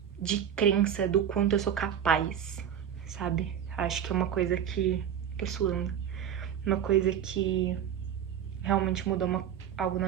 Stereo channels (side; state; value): left; quieter; 9.2 dB